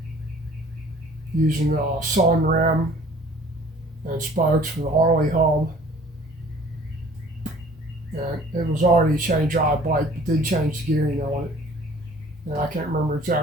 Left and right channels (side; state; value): both; normal; correlation 0.51